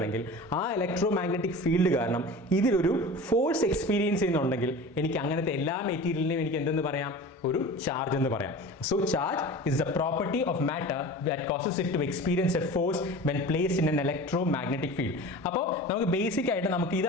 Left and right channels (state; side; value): normal; both; correlation 0.36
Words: ആ ഇലക്ട്രോ മാഗ്നറ്റിക് ഫീൽഡ് കാരണം ഇതിലൊരു ഫോഴ്സ് എക്സ്പീരിയൻസ് ചെയ്യുന്നുണ്ടെങ്കിൽ എനിക്ക് അങ്ങനത്തെ എല്ലാ മെറ്റീരിയലിനെയും എനിക്ക് എന്തെന്ന് പറയാം, ഒരു ചാർജ് എന്ന് പറയാം. So charge is the property of matter that causes it to experience a force when placed in an electromagnetic field. അപ്പോൾ നമുക്ക് ബേസിക് ആയിട്ട് നമുക്ക്